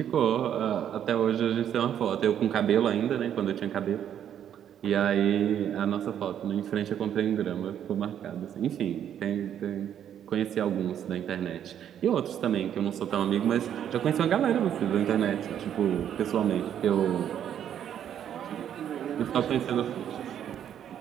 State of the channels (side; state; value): left; quieter; 9.7 dB